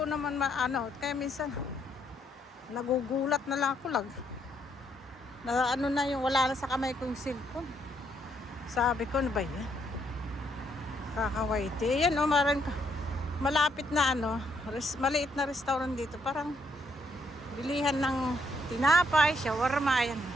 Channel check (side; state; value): both; normal; correlation 0.73